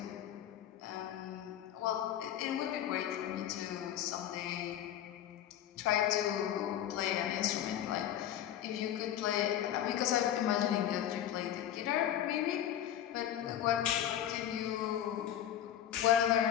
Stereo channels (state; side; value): quieter; right; 11.0 dB